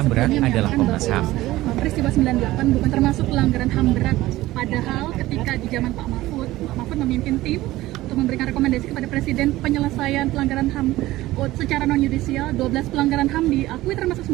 berat adalah Komnas HAM. Peristiwa 98 bukan termasuk pelanggaran HAM berat, padahal ketika di zaman Pak Mahfud memimpin tim untuk memberikan rekomendasi kepada Presiden penyelesaian pelanggaran HAM secara non-yudisial, 12 pelanggaran HAM diakui termasuk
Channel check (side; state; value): left; quieter; 17.0 dB